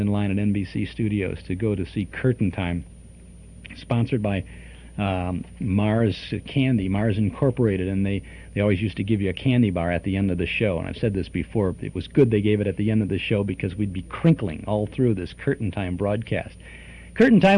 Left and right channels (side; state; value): both; identical; correlation 1.00